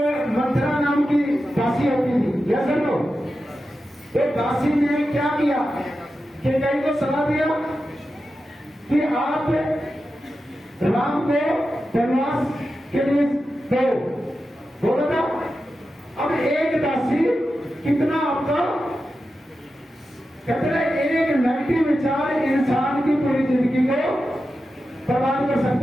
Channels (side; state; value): both; normal; correlation 0.91